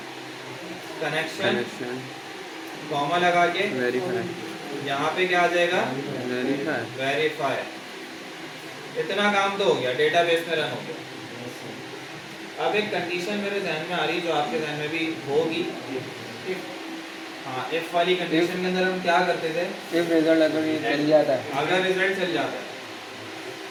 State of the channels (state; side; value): identical; both; correlation 1.00